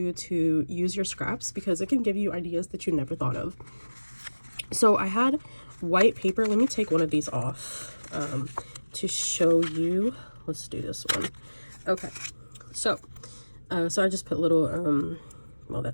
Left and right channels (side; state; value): both; inverted; correlation -1.00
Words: to use your scraps because it can give you ideas that you never thought of. So I had white paper. Let me take one of these off to show you. Let's do this one. Okay, so so I just put little